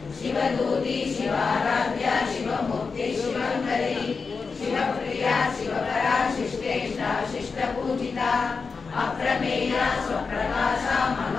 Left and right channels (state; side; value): quieter; right; 4.9 dB